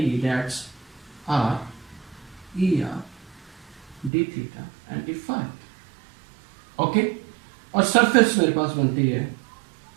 that's R E R d theta and d phi। Okay, और सरफेस मेरे पास बनती है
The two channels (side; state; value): left; drops out; at 4.1 s